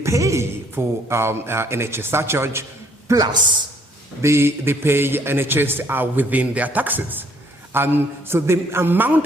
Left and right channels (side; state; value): both; normal; correlation 0.63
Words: for NHS surcharge, plus they pay NHS within their taxes. So the amount